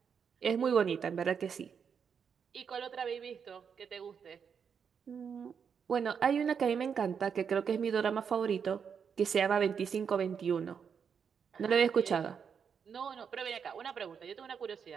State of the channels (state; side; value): quieter; left; 6.9 dB